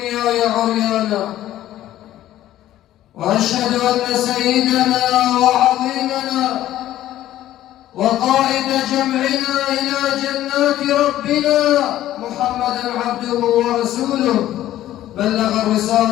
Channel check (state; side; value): quieter; right; 13.4 dB